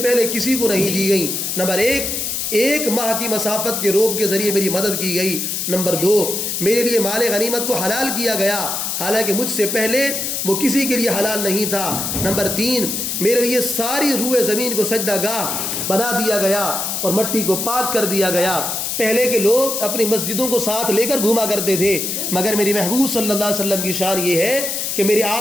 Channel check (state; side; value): noise; left; hiss, 2 dB below the sound